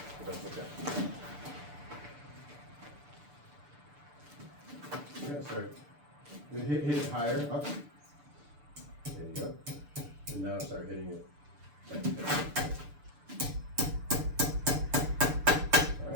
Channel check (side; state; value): left; late; 6.8 ms